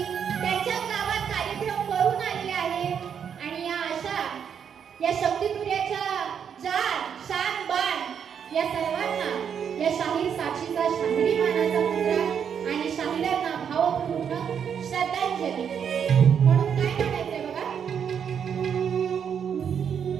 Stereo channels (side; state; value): left; quieter; 7.7 dB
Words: त्यांच्या गावात कार्यक्रम करून आलेले आहेत आणि या अशा या शक्तितुर्याच्या जान शान बाण या सर्वांना या शाहीर साक्षीचा शाहिरी मानाचा मुद्रा आणि शाहिरांना भावपूर्ण श्रद्धांजली म्हणून काय म्हणायचंय बघा.